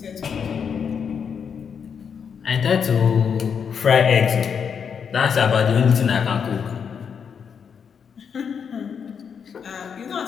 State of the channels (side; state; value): right; quieter; 6.9 dB